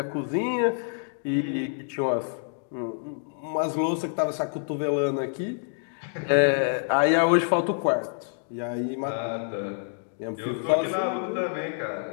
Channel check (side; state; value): right; silent; digital silence